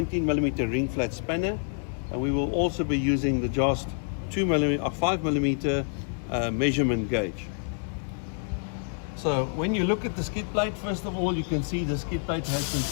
ring flat spanner, and we will also be using the Jost 5mm measurement gauge. So when you look at the skid plate, first of all, you can see the skid plate has been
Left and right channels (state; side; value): silent; right; 60 dB below the other